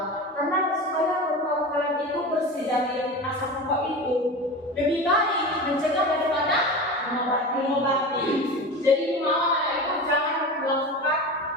Karena supaya paru-paru kalian itu bersih dari asap rokok itu, lebih baik mencegah daripada mengobati. Jadi mau anak itu jangan melakukan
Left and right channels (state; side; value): normal; both; correlation 0.29